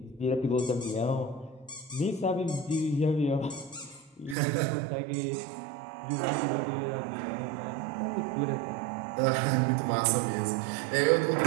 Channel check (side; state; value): left; drops out; at 4.4 s